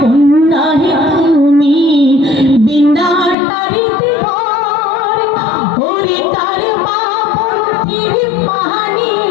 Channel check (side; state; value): right; drops out; at 3.4 s